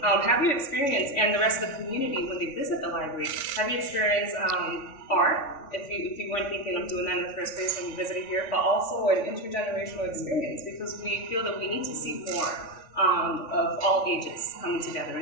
you experience, and the rest of the community when they visit the library, have you experience art, if you weren't thinking of doing that in the first place when you visited here, but also an intergenerational experience, because we feel that we need to see more of all ages coming together,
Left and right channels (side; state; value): right; late; 3.5 ms